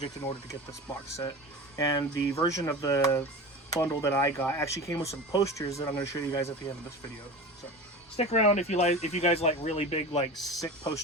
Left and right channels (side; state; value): both; normal; correlation 0.31